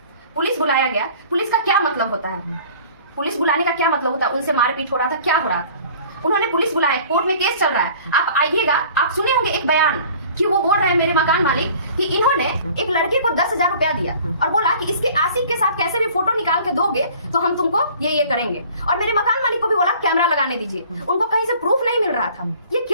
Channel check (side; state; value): both; inverted; correlation -0.49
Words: पुलिस बुलाया गया, पुलिस का क्या मतलब होता है? पुलिस बुलाने का क्या मतलब होता है? उनसे मारपीट हो रहा था, क्या हो रहा था? उन्होंने पुलिस बुलाया, कोर्ट में केस चल रहा है, आप आइएगा। आप सुने होंगे एक बयान कि वो बोल रहे हैं मेरे मकान मालिक कि इन्होंने एक लड़के को 10,000 रुपया दिया और बोला कि इसके आशिक के साथ कैसे भी फोटो निकाल के दोगे तो हम तुमको ये करेंगे। और मेरे मकान मालिक को भी बोला कैमरा लगाने दीजिए, उनको कहीं से प्रूफ नहीं मिल रहा था। ये